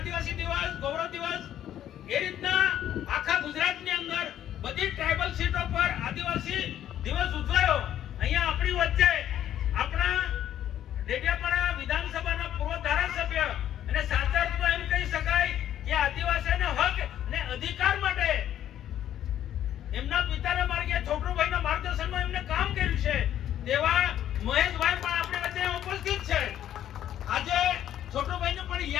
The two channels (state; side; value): quieter; right; 11.2 dB